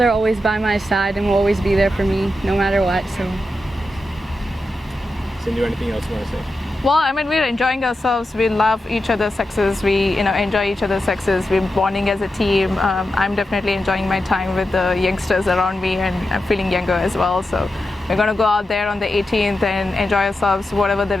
always by my side and will always be there for me no matter what. So. Sindhu, anything else you want to say? Well, I mean, we're enjoying ourselves. We love each other's success. We, enjoy each other's success. We're bonding as a team. I'm definitely enjoying my time with the youngsters around me, and I'm feeling younger as well. So we're going to go out there on the 18th and enjoy ourselves. Whatever the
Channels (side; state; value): both; normal; correlation 0.89